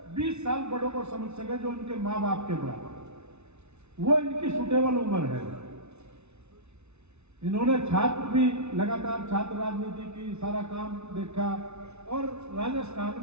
20 साल बड़ों को समझ सके, जो उनके माँ बाप के बराबर। वो इनकी सुटेबल उम्र है। इन्होंने छात्र भी लगातार छात्र राजनीति की सारा काम देखा, और राजस्थान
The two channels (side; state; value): left; late; 0.81 ms